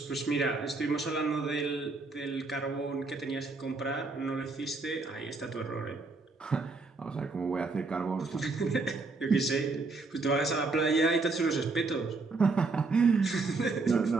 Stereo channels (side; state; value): left; quieter; 3.8 dB